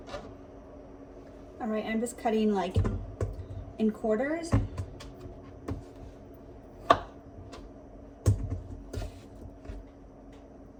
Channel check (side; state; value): both; identical; correlation 1.00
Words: All right, I'm just cutting like in quarters.